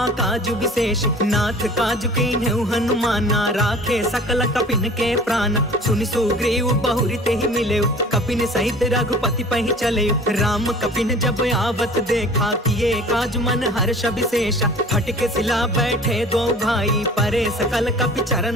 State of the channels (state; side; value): normal; both; correlation 0.45